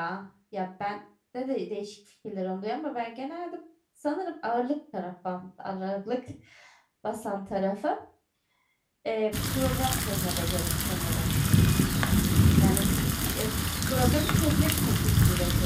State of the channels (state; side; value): identical; both; correlation 1.00